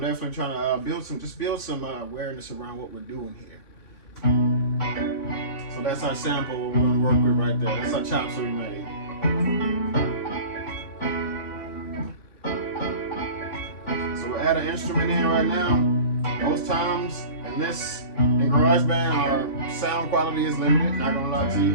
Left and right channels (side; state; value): right; late; 3.5 ms